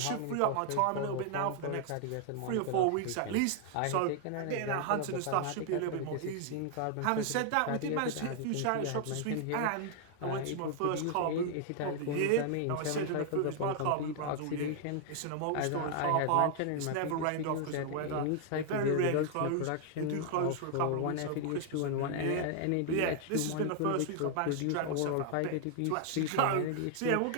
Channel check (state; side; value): different; both; correlation 0.00